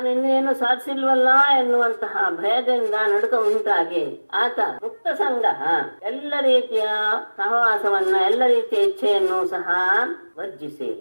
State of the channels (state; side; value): inverted; both; correlation -1.00